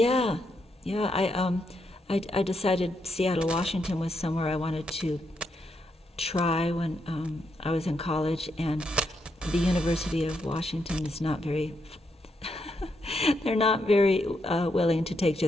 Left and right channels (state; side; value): normal; both; correlation 0.80